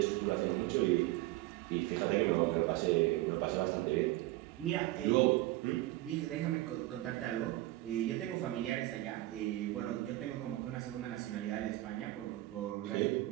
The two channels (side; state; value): left; quieter; 17.4 dB